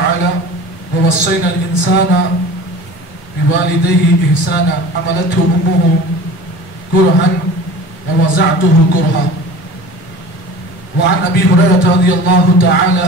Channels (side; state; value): both; normal; correlation 0.39